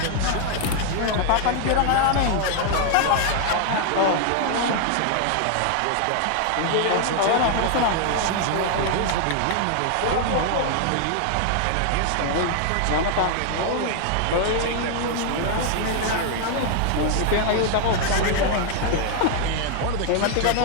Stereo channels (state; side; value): different; both; correlation 0.00